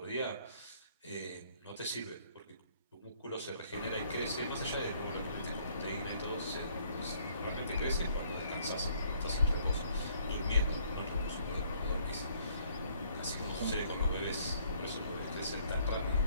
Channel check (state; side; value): inverted; both; correlation -0.63